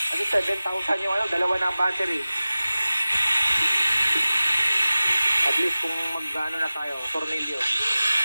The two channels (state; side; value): inverted; both; correlation -0.97